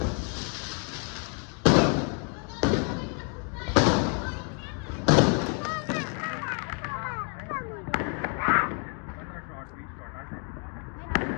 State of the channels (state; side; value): quieter; right; 39.9 dB